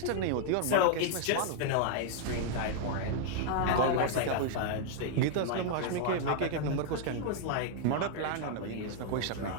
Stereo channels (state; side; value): different; both; correlation 0.00